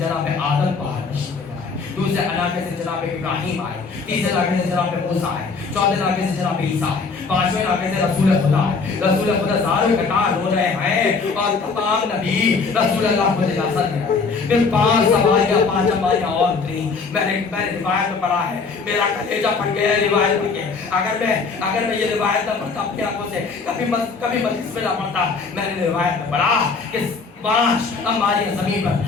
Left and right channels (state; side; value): quieter; right; 4.7 dB